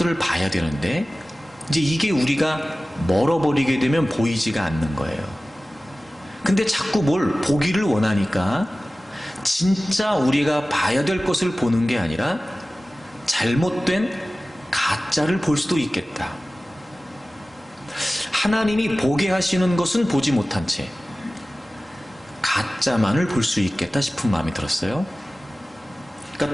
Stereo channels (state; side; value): normal; both; correlation 0.97